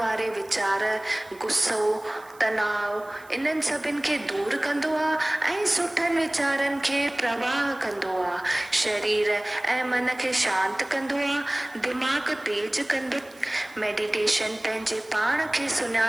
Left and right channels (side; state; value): right; noise; hiss, 26 dB below the sound